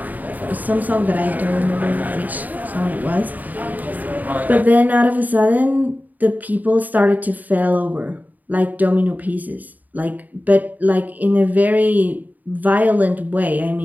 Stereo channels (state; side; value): late; left; 0.081 ms